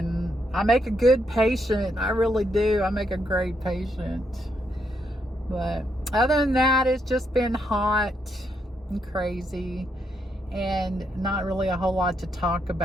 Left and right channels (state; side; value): normal; both; correlation 0.78